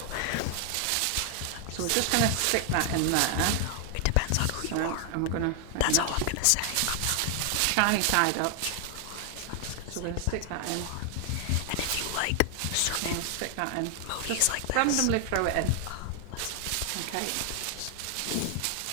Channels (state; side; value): different; both; correlation 0.00